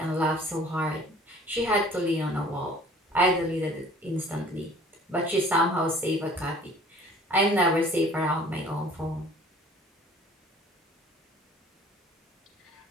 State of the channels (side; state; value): both; normal; correlation 0.51